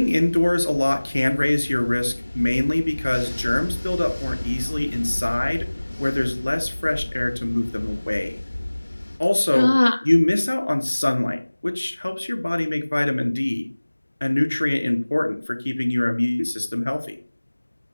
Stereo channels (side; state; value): both; inverted; correlation -1.00